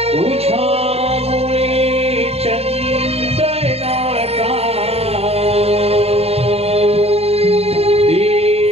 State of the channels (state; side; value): late; left; 0.29 ms